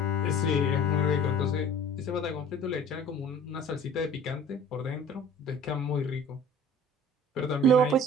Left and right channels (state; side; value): normal; both; correlation 0.46